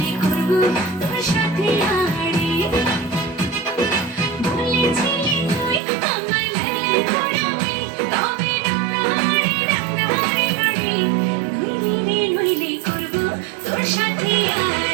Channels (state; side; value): drops out; left; at 5.8 s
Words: করবো তোর সাথে আড়ি। বলেছিলি তুই আমার লালা পরাবি, তবে রাঙাহারি রাঙাহারি বাড়ি, নইলে রে নইলে করবো তোর সাথে